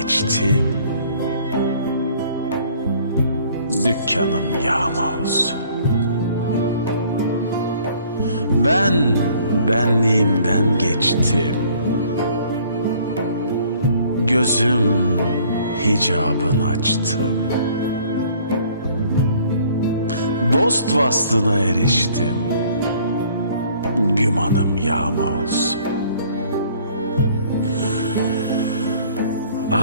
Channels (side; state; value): both; inverted; correlation -0.57